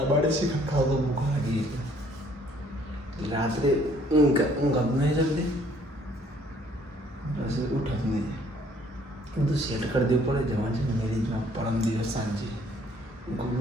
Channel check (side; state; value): both; normal; correlation 0.61